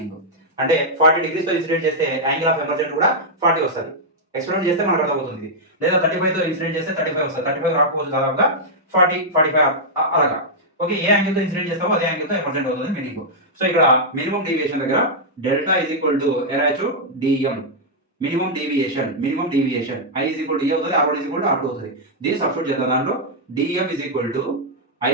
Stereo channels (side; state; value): both; normal; correlation -0.06